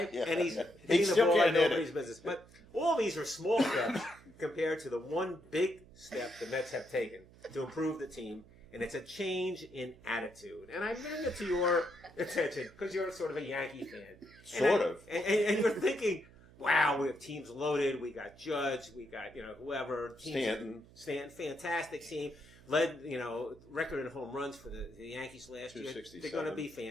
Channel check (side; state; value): right; noise; hum, 23 dB below the sound